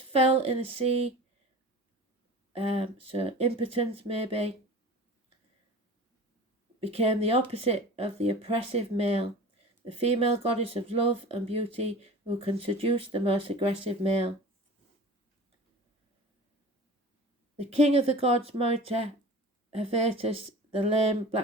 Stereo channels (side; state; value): both; normal; correlation 0.38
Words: in the sea, so impotence maybe became the opposite of the oppressive male, the female goddess of love and beauty who can seduce the most aggressive male. The king of the gods, Morita, Hephaestus, the lame